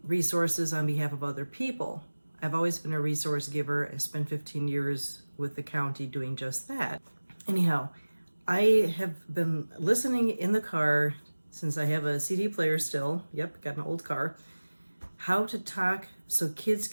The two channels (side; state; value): both; inverted; correlation -1.00